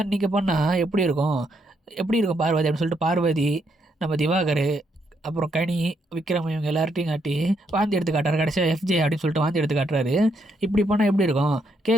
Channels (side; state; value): both; normal; correlation 0.76